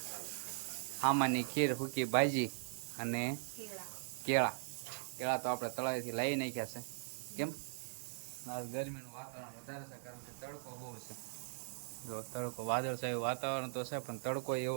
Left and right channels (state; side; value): silent; left; digital silence